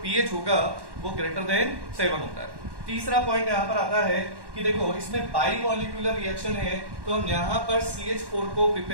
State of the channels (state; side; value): late; left; 1.1 ms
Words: pH होगा वो ग्रेटर देन 7 होता है। तीसरा पॉइंट यहाँ पर आता है कि देखो इसमें बाई मॉलिक्यूलर रिएक्शन है, तो हम यहाँ पर CH4 को